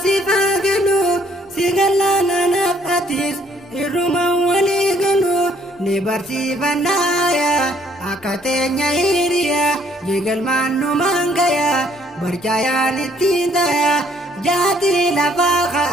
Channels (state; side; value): normal; both; correlation 0.64